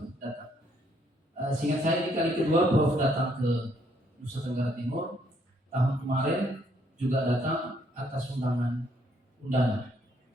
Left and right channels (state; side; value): normal; both; correlation 0.69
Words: datang. Seingat saya ini kali kedua Prof datang ke Nusa Tenggara Timur. Tahun kemarin juga datang atas undangan